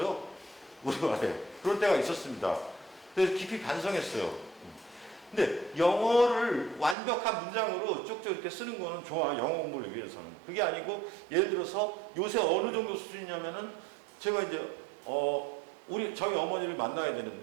우리말에. 그런 때가 있었습니다. 그래서 깊이 반성했어요. 근데 영어를 완벽한 문장으로 쭉쭉 이렇게 쓰는 거는 좋아. 영어 공부를 위해서는. 그게 아니고 예를 들어서 요새 어느 정도 수준이냐면은 제가 이제 저희 어머니를 만나야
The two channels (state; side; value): drops out; left; at 7.0 s